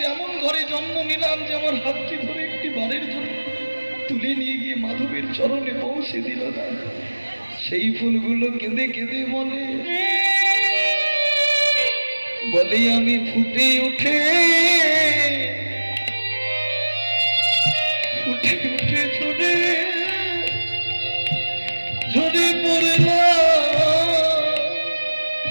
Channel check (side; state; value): both; inverted; correlation -1.00